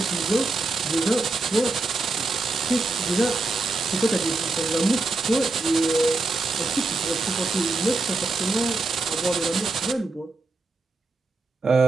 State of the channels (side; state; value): left; quieter; 3.4 dB